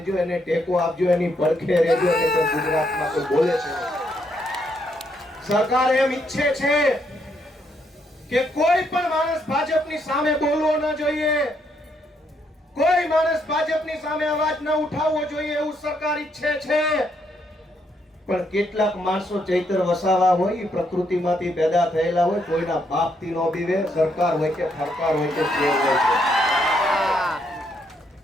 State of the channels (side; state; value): both; normal; correlation 0.75